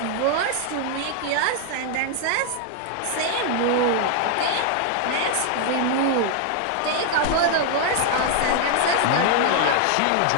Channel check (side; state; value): both; different; correlation 0.00